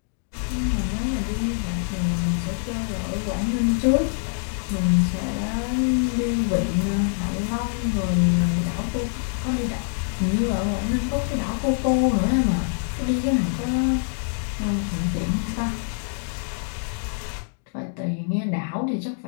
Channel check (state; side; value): silent; right; digital silence